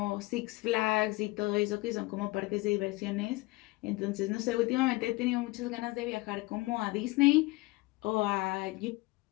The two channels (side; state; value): right; quieter; 22.4 dB